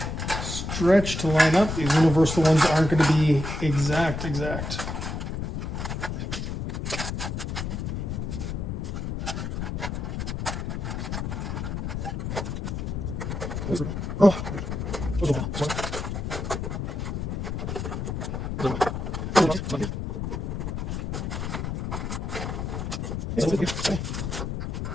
stretch to line up. These universal ones aren't going to be exact. Oh.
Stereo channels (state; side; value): noise; left; rumble, 3 dB below the sound